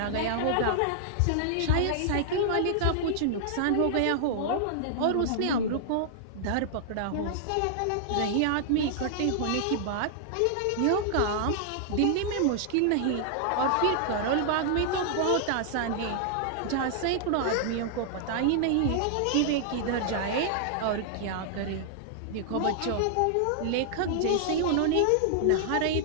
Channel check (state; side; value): different; both; correlation -0.01